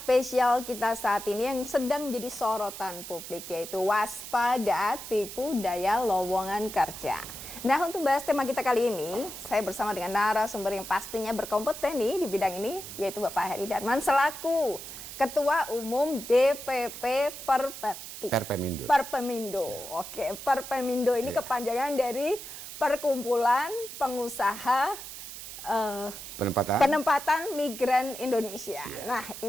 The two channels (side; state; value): right; noise; hiss, 11 dB below the sound